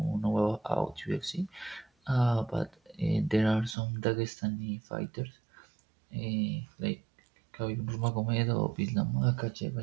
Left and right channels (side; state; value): left; drops out; at 3.8 s